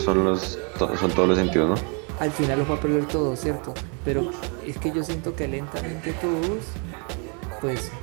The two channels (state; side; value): quieter; left; 37.0 dB